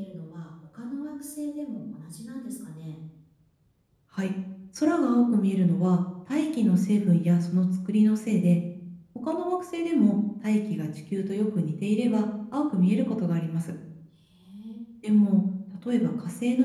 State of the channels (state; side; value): identical; both; correlation 1.00